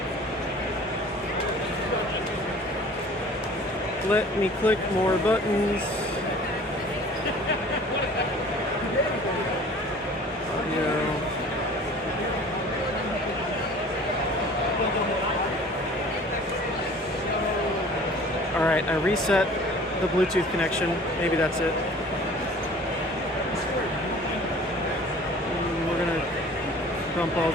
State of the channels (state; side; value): normal; both; correlation 0.47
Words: Let me click more buttons. Alright, I reset the Bluetooth connection. Maybe that's it. We're gonna bump all